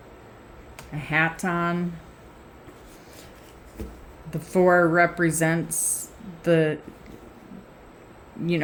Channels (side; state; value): both; identical; correlation 1.00